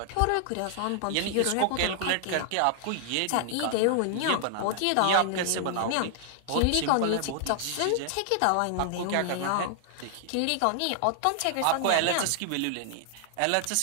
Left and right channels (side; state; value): both; different; correlation -0.01